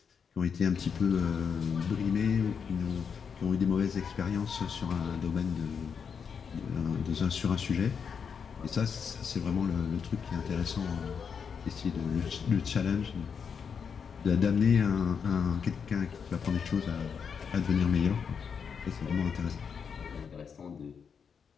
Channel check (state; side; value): quieter; right; 6.5 dB